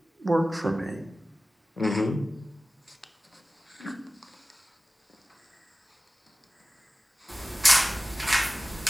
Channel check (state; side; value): normal; both; correlation 0.96